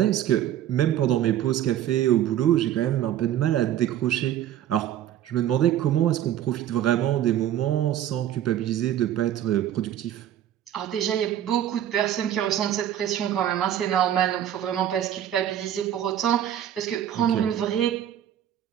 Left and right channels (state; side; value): quieter; left; 11.2 dB